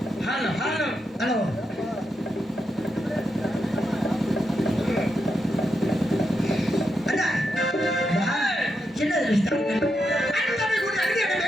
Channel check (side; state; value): both; normal; correlation 0.84